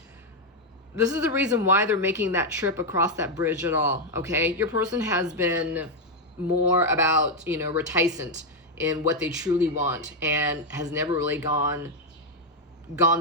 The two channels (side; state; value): both; normal; correlation 0.02